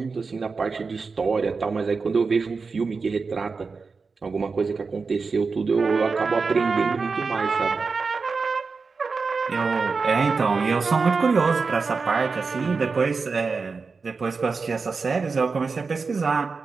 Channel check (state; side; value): quieter; left; 4.6 dB